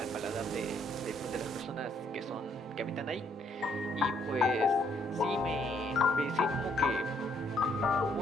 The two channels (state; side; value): normal; both; correlation 0.69